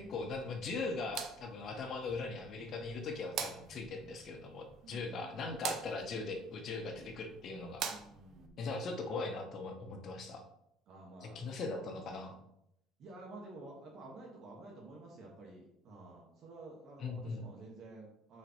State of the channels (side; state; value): both; normal; correlation 0.55